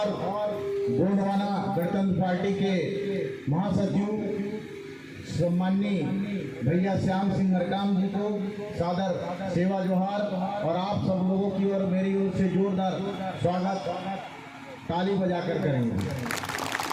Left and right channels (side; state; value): both; identical; correlation 1.00